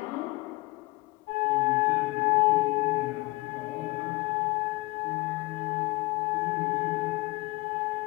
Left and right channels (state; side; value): quieter; right; 23.1 dB